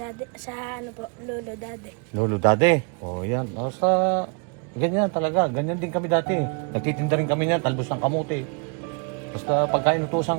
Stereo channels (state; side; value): quieter; left; 35.3 dB